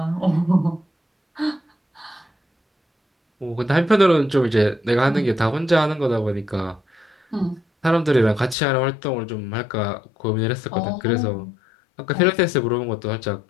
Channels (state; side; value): drops out; right; at 8.6 s